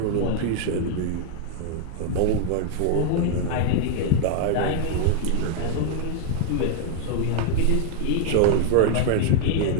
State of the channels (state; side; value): different; both; correlation 0.00